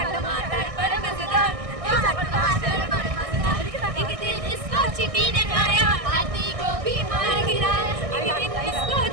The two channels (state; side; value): late; left; 1.6 ms